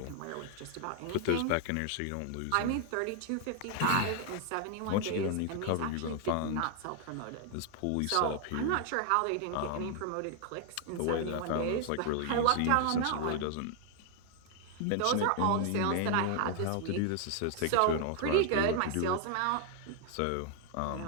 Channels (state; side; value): different; both; correlation 0.00